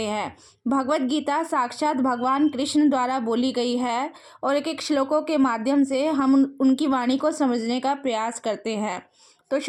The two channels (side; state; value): both; identical; correlation 1.00